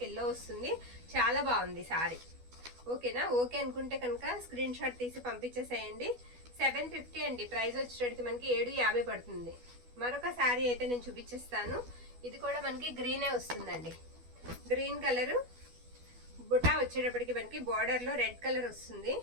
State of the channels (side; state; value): left; late; 12 ms